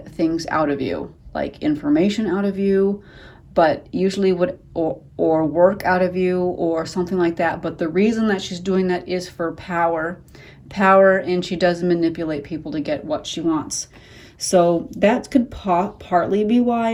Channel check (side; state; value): both; identical; correlation 1.00